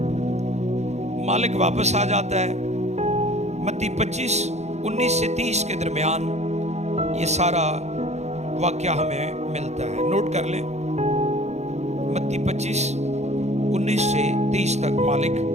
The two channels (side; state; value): left; late; 0.32 ms